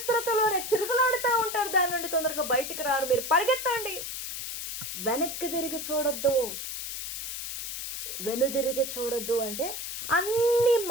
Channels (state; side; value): noise; left; hiss, 5 dB below the sound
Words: తిరుగులాడుతూ ఉంటారు. దాని నుండి తొందరగా బయటికి రారు. మీరు పరిగెత్తండి, వెనక్కి తిరిగి చూడొద్దు అంటే అన్ని